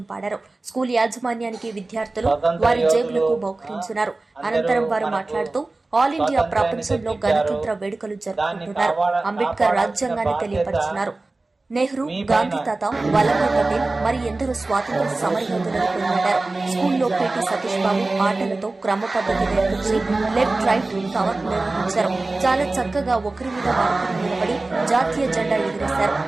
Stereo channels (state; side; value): quieter; left; 3.2 dB